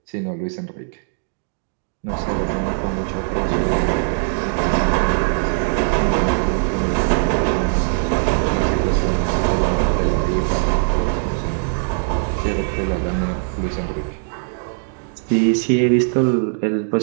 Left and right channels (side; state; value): left; silent; 62 dB below the other